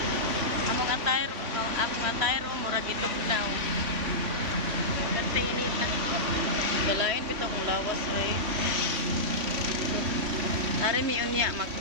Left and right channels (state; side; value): late; left; 3.1 ms